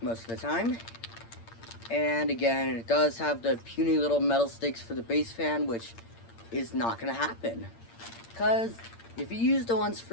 of the time. And again, it does have the puny little metal stakes for the base fan, which is not gonna happen. Because if you use the ones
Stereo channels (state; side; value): late; right; 8.7 ms